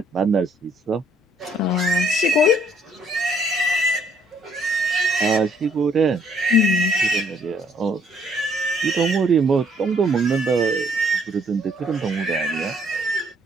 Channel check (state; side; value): normal; both; correlation 0.64